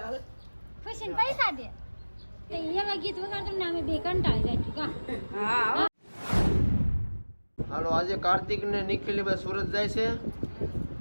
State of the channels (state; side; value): inverted; both; correlation -1.00